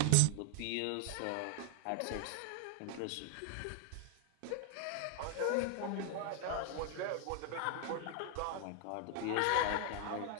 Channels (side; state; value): both; different; correlation 0.00